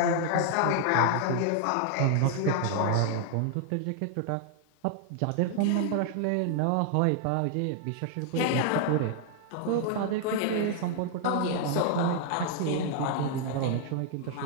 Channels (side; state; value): both; different; correlation 0.00